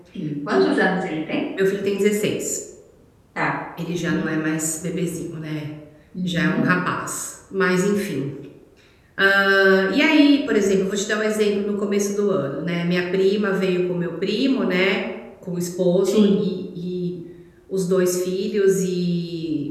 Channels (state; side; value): identical; both; correlation 1.00